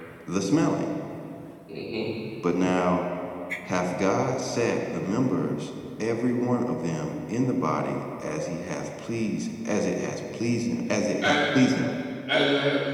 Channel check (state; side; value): identical; both; correlation 1.00